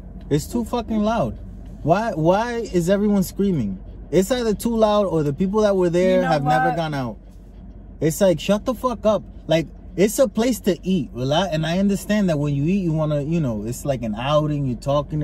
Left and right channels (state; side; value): identical; both; correlation 1.00